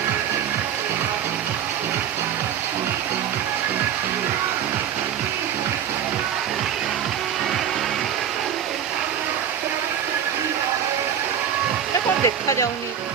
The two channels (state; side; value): quieter; left; 9.0 dB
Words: এটা କଣ ଦେଖାଯାଉନି,